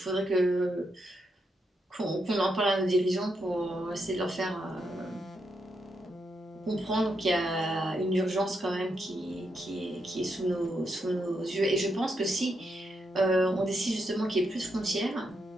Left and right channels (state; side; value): normal; both; correlation 0.82